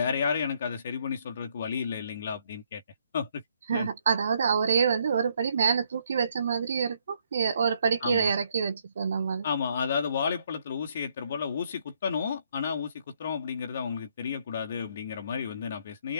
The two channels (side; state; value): both; inverted; correlation -0.71